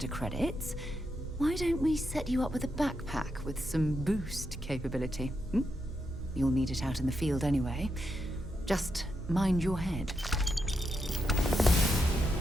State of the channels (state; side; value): normal; both; correlation 0.83